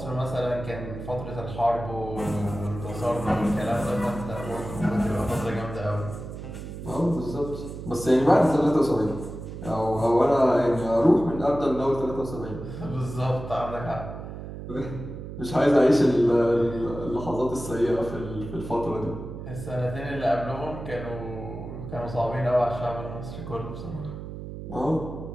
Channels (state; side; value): noise; right; hum, 10 dB below the sound